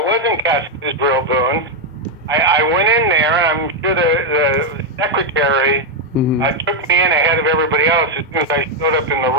wasn't cast as Israel Boone. I went in there, and I'm sure the secretary took me in ahead of everybody else as soon as I showed up in the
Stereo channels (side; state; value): both; normal; correlation 0.01